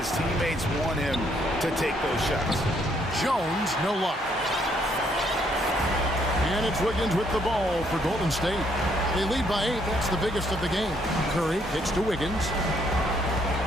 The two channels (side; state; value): both; normal; correlation 0.70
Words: teammates want him to take those shots. Jones, no luck. And it's Wiggins with the ball for Golden State. They lead by 8. That's the biggest of the game. Curry kicks to Wiggins.